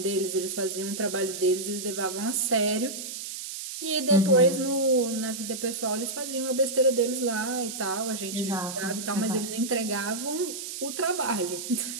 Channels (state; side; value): noise; right; hiss, 8 dB below the sound